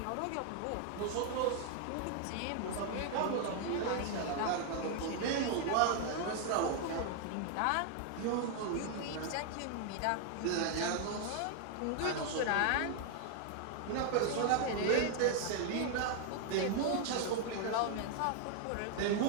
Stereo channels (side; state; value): both; different; correlation 0.00